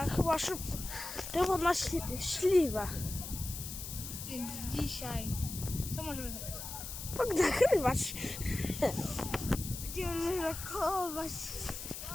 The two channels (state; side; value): noise; left; hiss, 8 dB below the sound